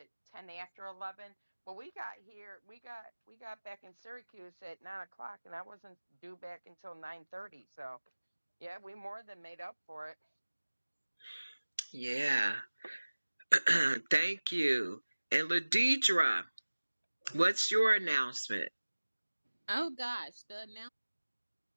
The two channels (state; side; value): inverted; both; correlation -1.00